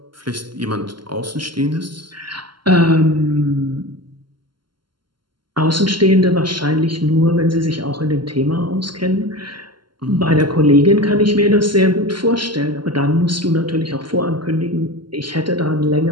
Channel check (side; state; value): left; late; 0.72 ms